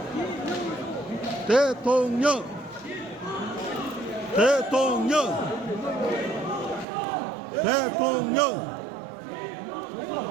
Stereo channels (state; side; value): drops out; left; at 6.9 s